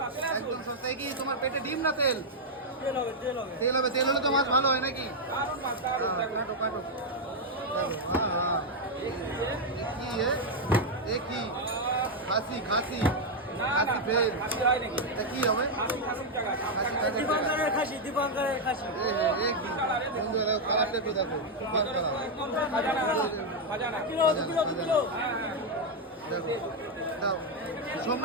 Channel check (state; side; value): normal; both; correlation 0.00